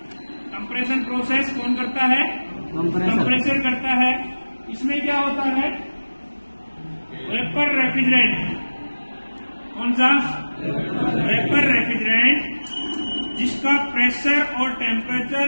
कंप्रेशन प्रोसेस कौन करता है? कंप्रेसर करता है। इसमें क्या होता है? Vapour refrigerant. कौन सा? वेपर रेफ्रिजरेंट, जिसका प्रेशर और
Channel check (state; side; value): inverted; both; correlation -1.00